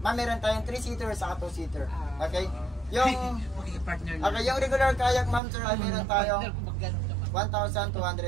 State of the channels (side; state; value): left; drops out; at 5.4 s